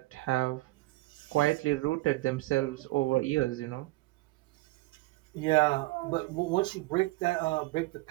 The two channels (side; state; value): left; quieter; 20.7 dB